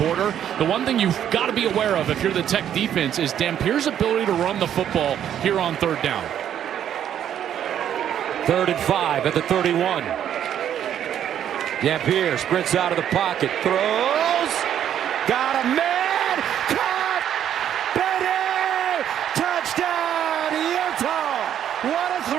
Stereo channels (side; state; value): left; quieter; 10.0 dB